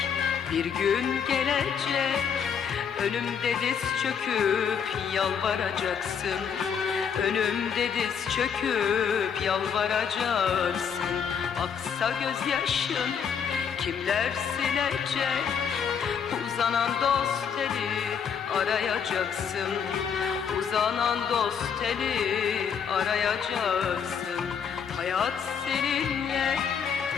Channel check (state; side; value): quieter; right; 7.2 dB